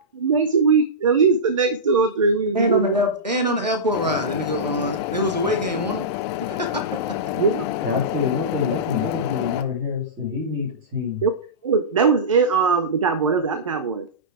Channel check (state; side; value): normal; both; correlation -0.17